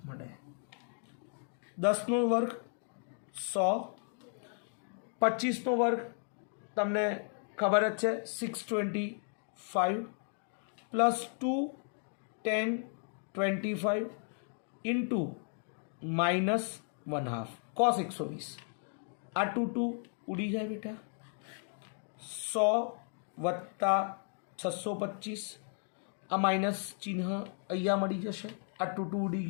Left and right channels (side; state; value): right; silent; 55 dB below the other